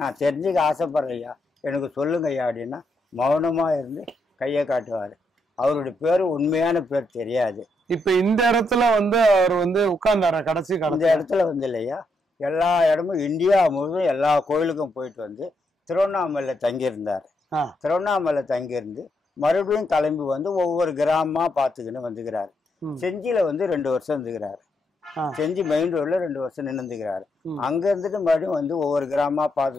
தெரிஞ்சுக்க ஆசைப்படுறேன் ஐயா, எனக்கு சொல்லுங்க ஐயா அப்படின்னா மௌனமா இருந்து கையை காட்டுவாரு. அவருடைய பேரு உண்மையான பேர் தெரியாது. இப்ப இந்த இடத்துல வந்து அவர் வந்து உட்கார்ந்தார கடைசி இந்த இடத்துல வந்து இல்லையா, எல்லா இடமும் இந்தியா முழுவதும் எல்லா கோயிலுக்கும் போயிட்டு வந்து திருவண்ணாமலையில தங்கியிருந்தார். திருவண்ணாமலை தங்கியிருந்து மறுபடியும் கிளம்பி வந்து ஒவ்வொரு கிராமமா பார்த்துக்கின்னு வந்துக்கிறாரு. செஞ்சியில வந்து 2 வருஷம் இருந்துக்கிறாரு. செஞ்சி மெயின் ரோட்ல 2 வருஷம் நின்றுக்கிறாரு. அங்க இருந்துட்டு மறுபடியும் வந்து ஒவ்வொரு கிராமமா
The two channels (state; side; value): normal; both; correlation 0.79